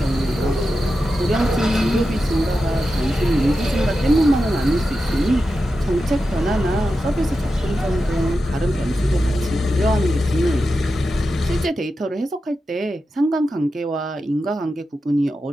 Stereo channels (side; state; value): both; normal; correlation 0.90